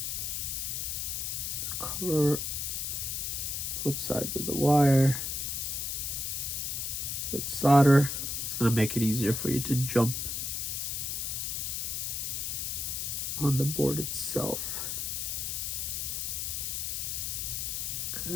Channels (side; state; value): left; noise; hiss, 2 dB below the sound